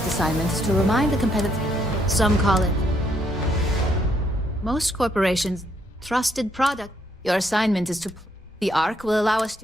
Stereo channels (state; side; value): normal; both; correlation 0.72